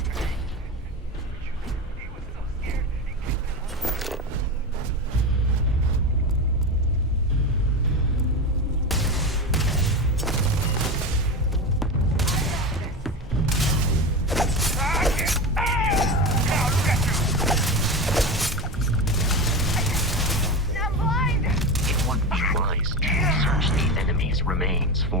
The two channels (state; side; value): normal; both; correlation 0.22